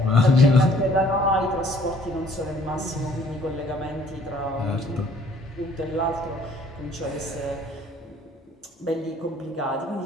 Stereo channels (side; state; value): both; normal; correlation 0.59